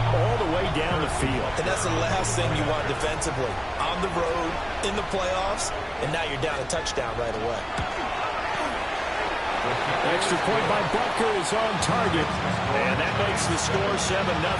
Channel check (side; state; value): both; identical; correlation 1.00